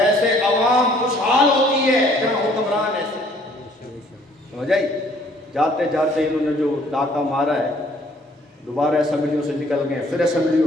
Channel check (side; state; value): both; normal; correlation 0.60